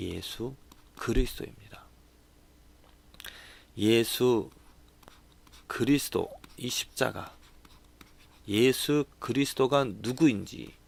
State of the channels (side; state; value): both; identical; correlation 1.00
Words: 그리스도입니다. 예수 그리스도, 이 십자가, 예수 그리스도가 누구인지,